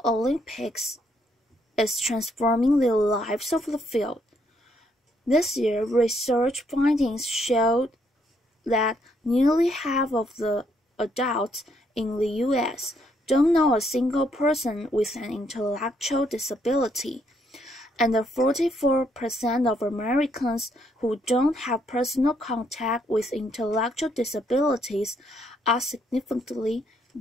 Olympics is transforming the lives of the field. This year, research findings showed that nearly half of the adults in the U.S. don't know a single person with an intellectual disability, and 44% of Americans who don't have personal contact with intellectual disabilities are significantly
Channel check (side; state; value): both; normal; correlation 0.72